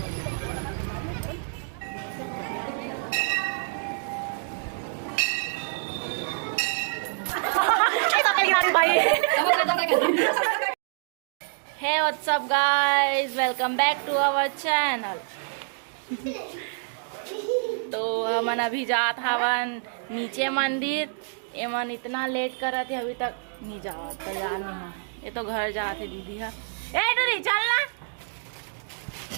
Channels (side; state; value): left; silent; digital silence